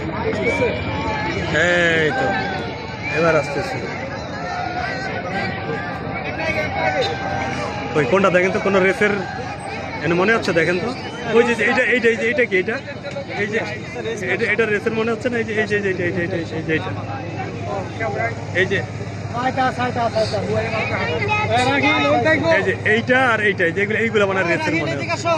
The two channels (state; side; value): identical; both; correlation 1.00